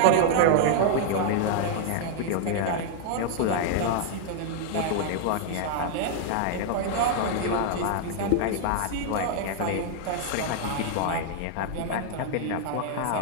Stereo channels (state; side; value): different; both; correlation -0.01